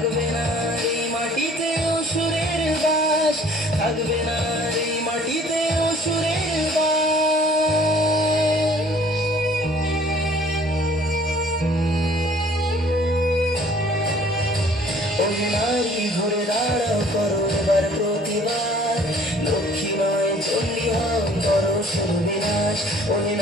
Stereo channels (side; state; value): both; normal; correlation 0.54